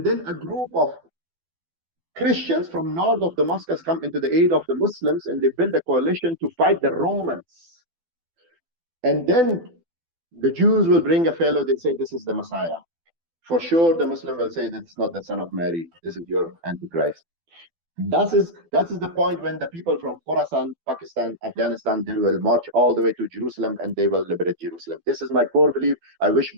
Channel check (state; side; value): late; left; 12 ms